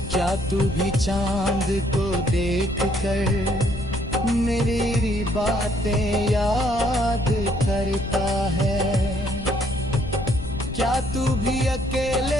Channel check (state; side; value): noise; left; rumble, 9 dB below the sound